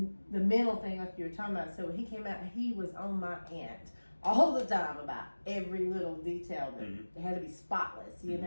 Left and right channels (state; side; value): inverted; both; correlation -1.00